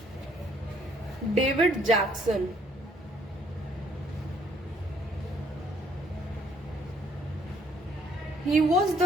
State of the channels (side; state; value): both; normal; correlation 0.64